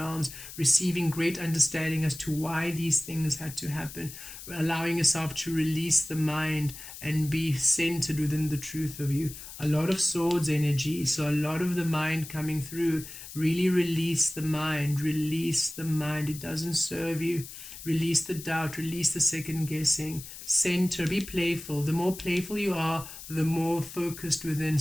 receiving great understanding as to why these things had to happen, allowing yourself to release the mind and be centered within the truth of you. A lot of swords energy, so a lot of the mind coming through. Really release the mind, it doesn't serve you. Release the doubt, release the second guessing. Center, be playful. The more playful you are, the more focused within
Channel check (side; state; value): left; noise; hiss, 13 dB below the sound